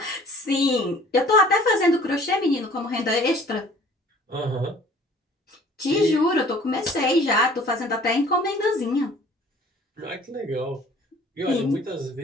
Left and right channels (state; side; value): normal; both; correlation 0.52